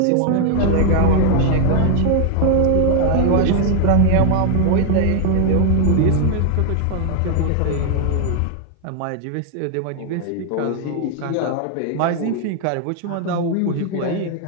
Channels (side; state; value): both; different; correlation 0.00